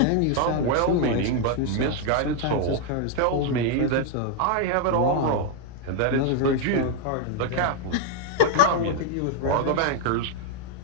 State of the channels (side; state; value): both; different; correlation 0.00